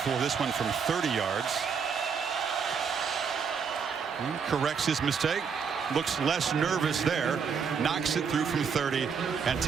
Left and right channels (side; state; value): left; quieter; 6.3 dB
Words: this one from 30 yards. Corrects his mistake, looks less nervous there, knocks it through from 30 and